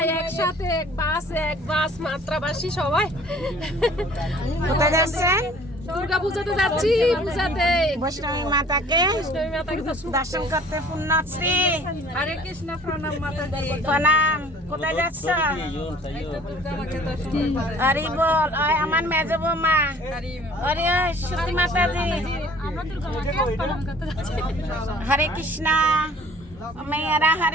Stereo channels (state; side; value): normal; both; correlation 0.52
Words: একসাথে এক বাস মাত্রাবাসী সবাই কোথায় যাচ্ছেন? দুর্গা পূজাতে যাচ্ছি। পূজাতে বৈষ্ণবী মাতাকে বৈষ্ণবী মাতাকে দর্শন করতে পুণ্যশ্রী। হরে কৃষ্ণ। প্রণাম মাতাজি। প্রণাম। কোথায় যাচ্ছ? দুর্গা মাকে দর্শন করতে। হরি বল। ওই আমার মেজো বৌমা। হরে সতী মাতাজি। আমরা দুর্গা মাকে প্রণাম করতে যাচ্ছি। হরে কৃষ্ণ। মেয়েরা